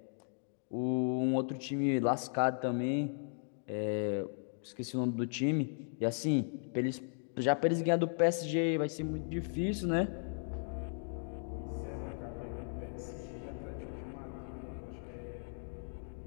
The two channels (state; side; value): silent; right; digital silence